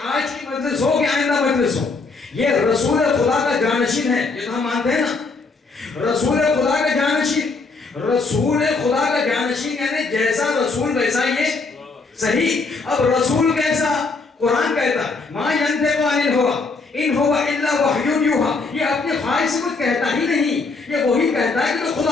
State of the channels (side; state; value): right; quieter; 4.0 dB